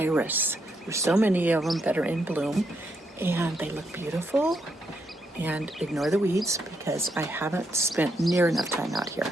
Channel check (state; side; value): normal; both; correlation 0.78